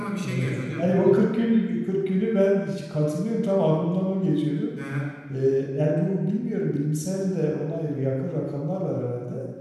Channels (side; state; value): both; identical; correlation 1.00